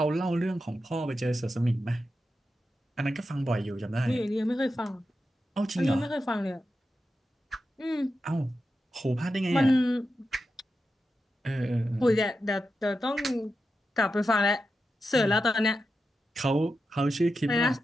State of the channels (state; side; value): normal; both; correlation 0.89